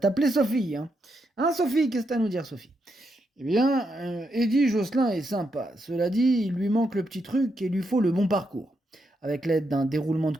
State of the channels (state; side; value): normal; both; correlation 0.81